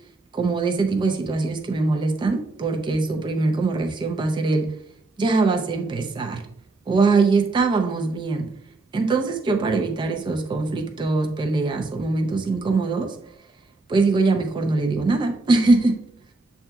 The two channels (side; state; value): left; quieter; 3.2 dB